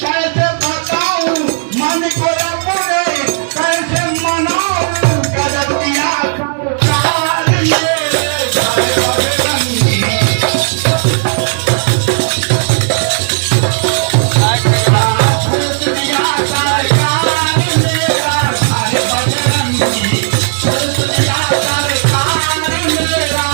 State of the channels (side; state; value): left; silent; digital silence